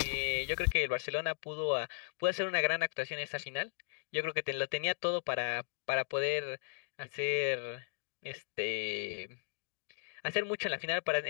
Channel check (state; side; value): silent; right; digital silence